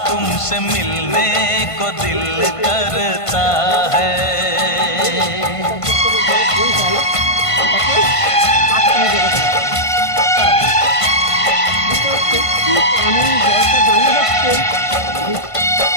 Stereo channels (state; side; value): late; right; 1.5 ms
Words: तुमसे मिलने को दिल करता है।